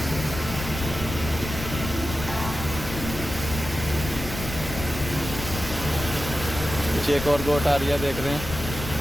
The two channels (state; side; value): noise; left; rumble, 8 dB below the sound